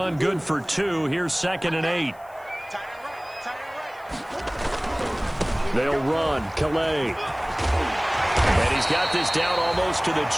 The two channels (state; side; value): noise; left; hiss, 28 dB below the sound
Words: good for 2. Here's 2nd and 8. They'll run. Calais. And he's got this down almost to the